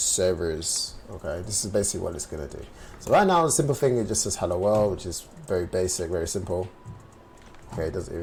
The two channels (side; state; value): both; identical; correlation 1.00